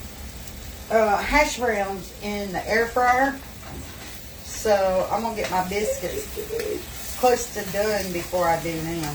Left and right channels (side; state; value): both; identical; correlation 1.00